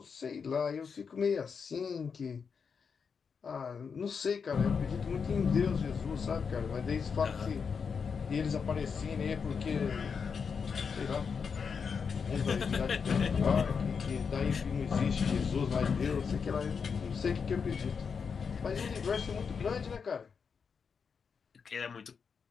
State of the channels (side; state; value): right; quieter; 6.0 dB